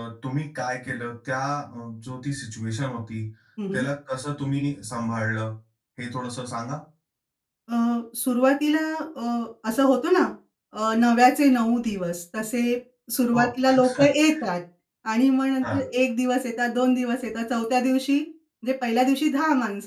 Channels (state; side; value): identical; both; correlation 1.00